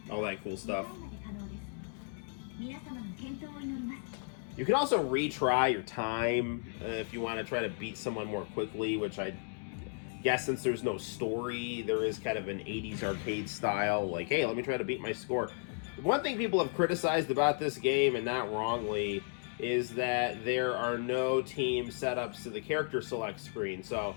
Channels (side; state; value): right; silent; 55 dB below the other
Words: all that cool stuff. You can also retry your time if you want to try to beat someone more quickly, which I guess since there's no story, there is kind of an 80s arcade style, like, hey, let me try to beat my score. One thing people have criticized about this game, and not wrongly, is that there are no team setups to the character select screen. So,